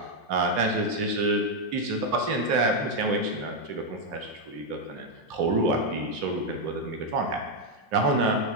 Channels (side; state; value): left; late; 3.0 ms